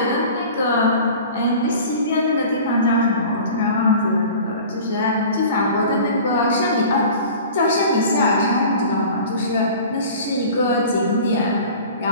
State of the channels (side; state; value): both; inverted; correlation -0.41